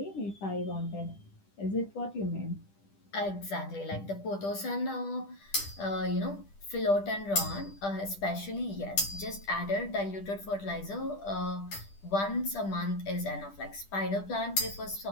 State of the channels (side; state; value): right; late; 10 ms